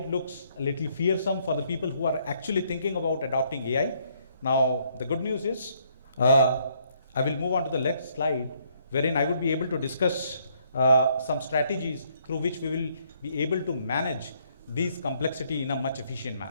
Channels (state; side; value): inverted; both; correlation -0.69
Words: looks a little fearsome for the people who are actually thinking about adopting AI, now the good news is I will move on to the next slide, wherein I would be able to discuss some strategies through which we will be able to manage these complexity in a much efficient